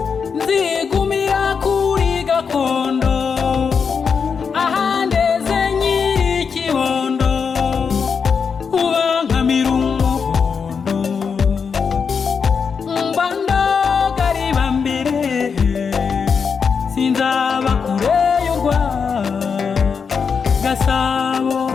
nzigumira kuri gakondo ahandeze nyirikibondo ubankamira umuhondo mbandagariba mbere sinzaba kure y'urwa Gasabo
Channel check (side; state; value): right; quieter; 6.0 dB